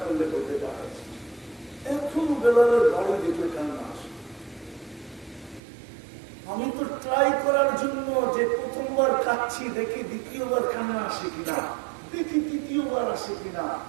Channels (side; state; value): left; drops out; at 5.6 s